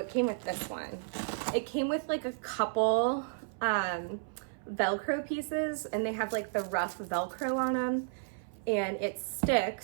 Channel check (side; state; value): left; silent; 56 dB below the other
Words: came with this one. It came with like a couple Velcro pieces, and they have like the rough Velcro on them, and it